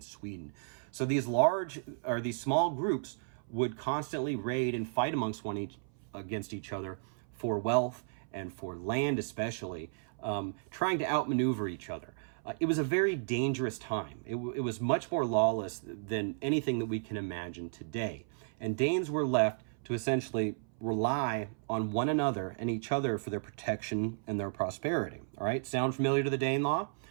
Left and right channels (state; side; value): silent; left; 55 dB below the other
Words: Sweden. So these small groups would constantly raid and fight against each other for wealth and for land especially, trying to outmaneuver each other. It was a very dangerous time. It was much more lawless than anything that we can imagine today. And Danes were left to essentially rely on one another and each other for their protection and their prosperity. All right, sound familiar to the Danelaw?